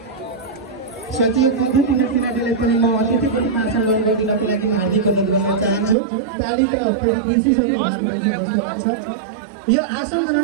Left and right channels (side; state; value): left; drops out; at 6.0 s